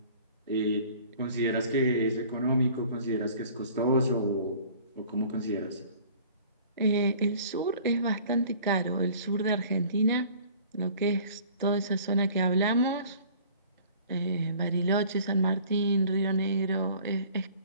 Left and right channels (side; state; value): both; inverted; correlation -0.49